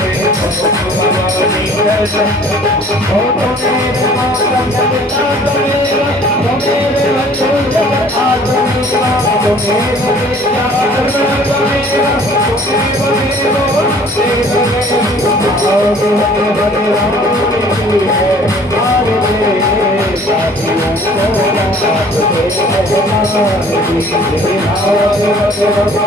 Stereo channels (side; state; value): both; normal; correlation 0.53